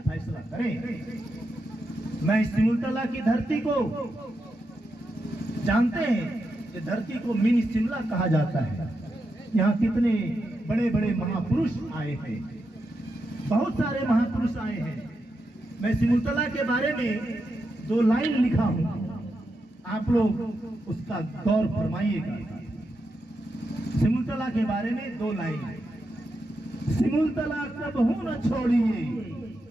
फैसला करें। मैं सिमुलतला की धरती को जानते हैं कि धरती को मिनी शिमला कहा जाता है। यहाँ कितने बड़े बड़े महापुरुष आए हैं, बहुत सारे महापुरुष आए हैं। मैं सिमुलतला के बारे में 2 लाइन लिखा हूं, आप लोग उसका गौर फरमाइएगा। सिमुलतला के बारे में 2 लाइन। सिमुलतला कबहू न छोड़िए,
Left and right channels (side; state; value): both; normal; correlation 0.86